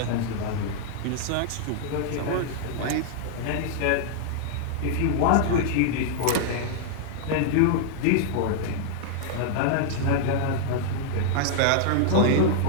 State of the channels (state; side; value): different; both; correlation -0.01